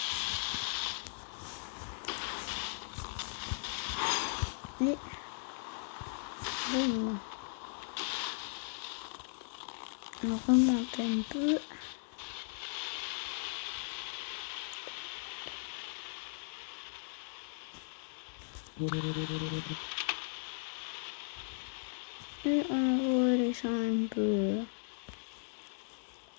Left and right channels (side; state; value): right; silent; digital silence